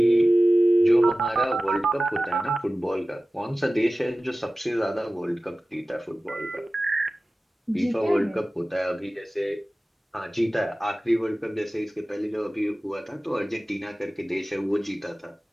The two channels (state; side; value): normal; both; correlation 0.96